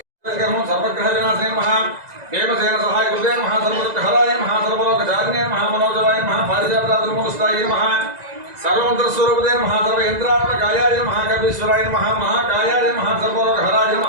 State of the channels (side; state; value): left; late; 2.0 ms